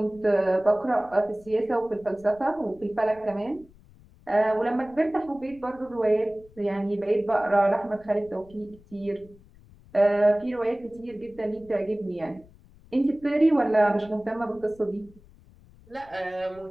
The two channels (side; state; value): left; noise; rumble, 25 dB below the sound